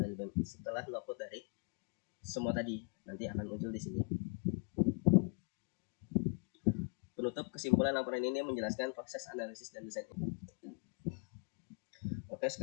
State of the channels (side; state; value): right; quieter; 36.5 dB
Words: logout dari semua tadi nanti akan muncul di sini. Penutup kesimpulan laporan ini menjelaskan proses analisis dan desain. Oke,